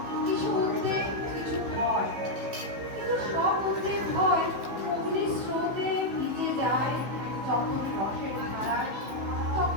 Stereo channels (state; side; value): late; left; 15 ms